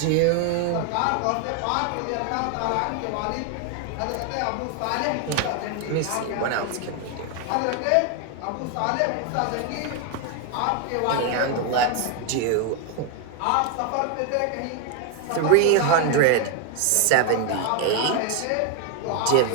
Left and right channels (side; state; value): both; different; correlation 0.01